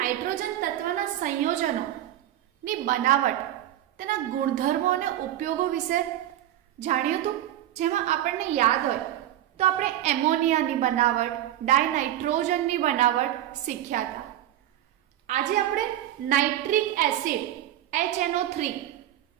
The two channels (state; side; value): quieter; left; 12.8 dB